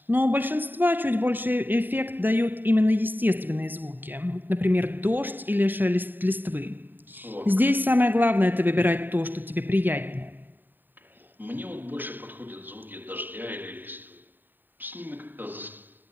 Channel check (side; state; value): left; late; 0.092 ms